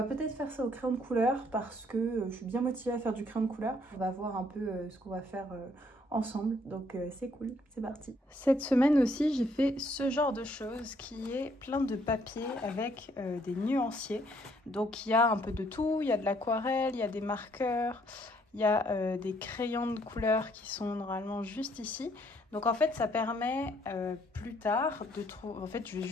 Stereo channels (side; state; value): both; normal; correlation 0.67